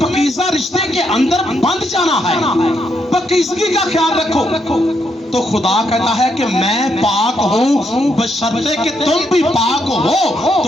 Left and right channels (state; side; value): normal; both; correlation 0.77